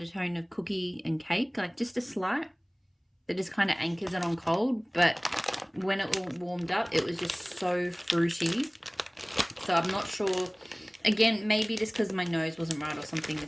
of cookie and cake, like just a slight that just kind of anchors it on cold. But when it all warmed up, it was just so fruity. So I'm not sure. Again, maybe just because my nose wasn't right or something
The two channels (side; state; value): both; identical; correlation 1.00